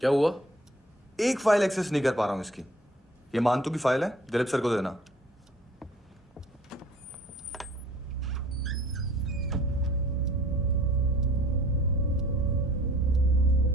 हुआ? एक फाइल एक्सेस नहीं कर पा रहा हूं इसकी। ये मानतू की फाइल है, दिलीप सर को देना।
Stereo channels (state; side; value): normal; both; correlation 0.52